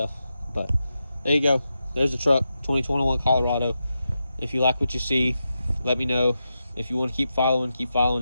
But there you go. There's the truck, 2021 Colorado. If you like what you see, let me know. If you want to keep following, keep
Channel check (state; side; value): inverted; both; correlation -0.88